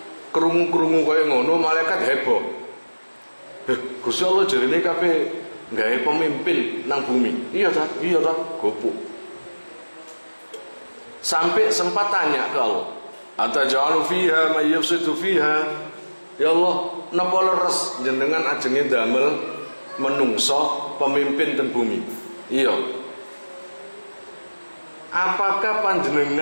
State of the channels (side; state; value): both; inverted; correlation -1.00